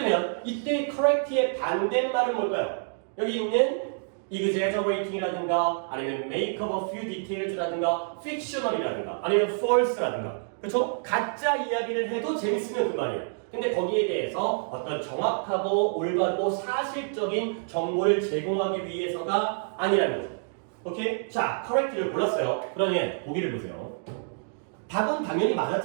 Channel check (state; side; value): silent; left; digital silence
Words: 이때 correct의 반대말은 뭘까요? 여기 있는 exaggerating이라든가 아니면 make up a few details라든가 fictional이라든가 아니면 false라든가 그렇죠? 가짜 이야기를 해도 재밌으면 그만이에요. 근데 거기에 대해서 어떤 정확하고 올바르고 사실적인 정보를 제공하기 위해서가 아니라는 거죠. 오케이? 자, correct를 골랐어요. 그러면 보기를 보세요. 답은 당연히